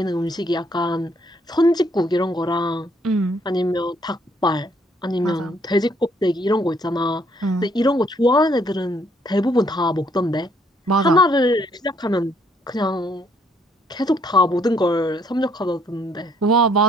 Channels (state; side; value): normal; both; correlation 0.67